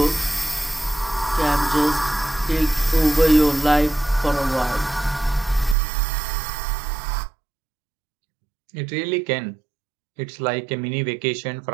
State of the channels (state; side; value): drops out; left; at 5.8 s